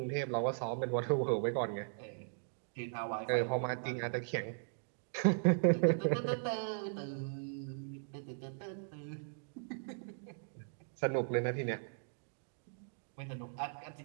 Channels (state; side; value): silent; left; digital silence